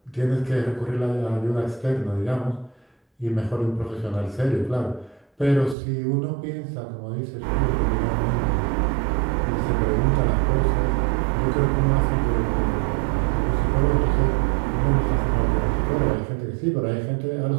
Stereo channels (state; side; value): drops out; left; at 5.8 s